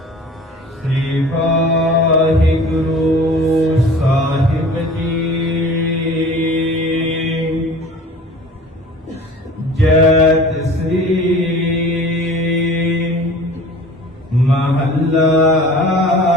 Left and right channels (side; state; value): both; normal; correlation 0.44